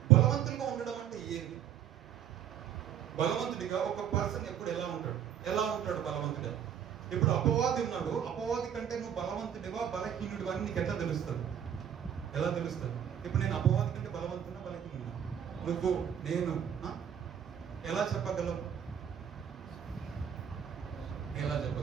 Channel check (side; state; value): left; quieter; 9.3 dB